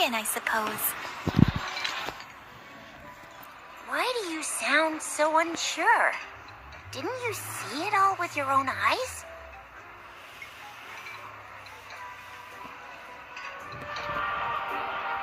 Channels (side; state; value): both; identical; correlation 1.00